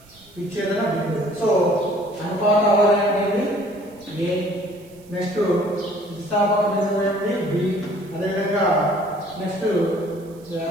విచ్ఛేదన బిందువు. సో అనుపాత అవధి అనేది ఏ, నెక్స్ట్ స్థితిస్థాపక బిందువు ఏంటి బి, అదేవిధంగా నెక్స్ట్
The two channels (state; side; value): noise; right; hiss, 28 dB below the sound